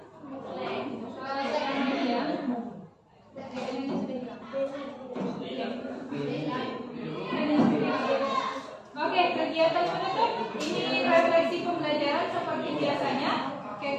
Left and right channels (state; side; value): identical; both; correlation 1.00